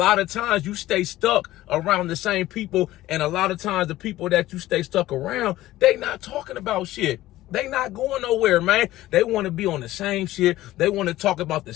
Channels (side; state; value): right; quieter; 15.8 dB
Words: of times you stay stuck around the same people, and a lot of times the people that you stay stuck around, they not talking about shit. They not going nowhere, man. They want to be on the same shit. They want to talk about the